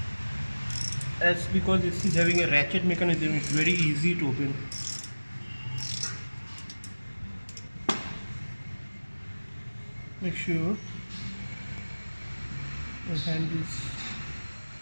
As because this is having a ratchet mechanism, it's very easy to open. Make sure your hand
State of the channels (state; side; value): inverted; both; correlation -1.00